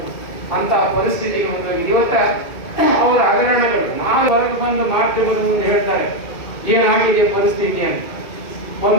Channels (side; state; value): right; late; 2.2 ms